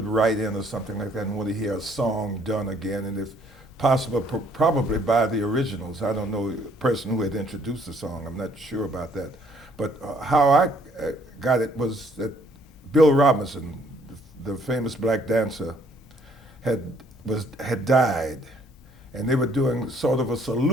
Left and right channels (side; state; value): both; normal; correlation 0.63